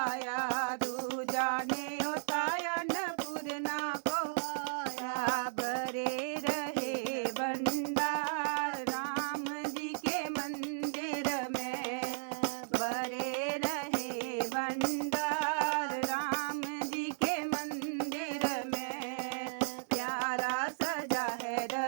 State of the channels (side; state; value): left; silent; digital silence